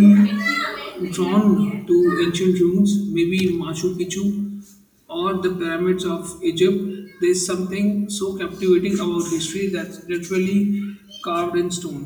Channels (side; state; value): both; identical; correlation 1.00